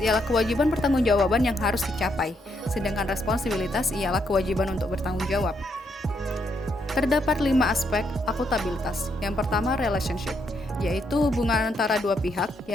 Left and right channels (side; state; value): both; normal; correlation 0.76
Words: ialah kewajiban pertanggungjawaban yang harus dicapai, sedangkan responsibilitas ialah kewajiban untuk bertanggung jawab. Terdapat 5 aspek akuntabilitas. Yang pertama, relationship, yaitu hubungan antara dua pihak,